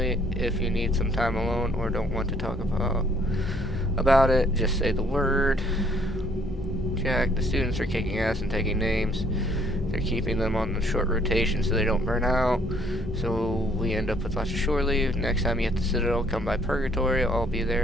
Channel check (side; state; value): both; normal; correlation 0.63